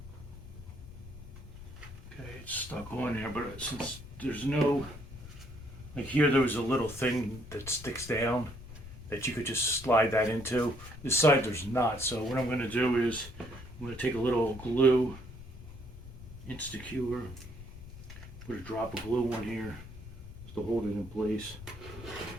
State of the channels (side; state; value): left; noise; rumble, 14 dB below the sound